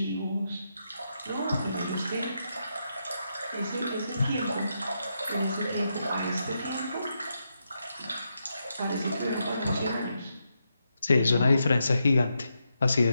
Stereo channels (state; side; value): inverted; both; correlation -0.84